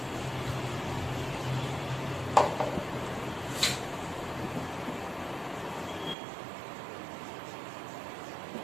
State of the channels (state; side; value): drops out; left; at 6.2 s